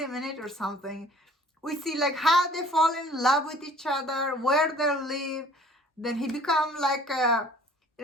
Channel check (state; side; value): normal; both; correlation 0.52